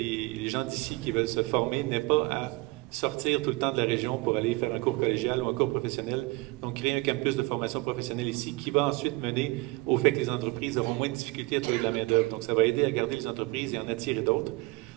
gens d'ici qui veulent se former n'aient pas à sortir tout le temps de la région pour aller faire un cours collégial ou un cours professionnel. Donc, créer un campus de formation professionnelle ici qui va ensuite mener au fait que les entreprises auront moins de difficultés à trouver de la main-d'œuvre. Donc, ça va aider à garder les entreprises et en attirer d'autres.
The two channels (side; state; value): left; quieter; 24.0 dB